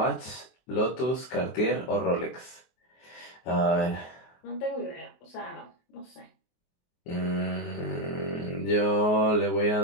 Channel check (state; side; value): late; right; 24 ms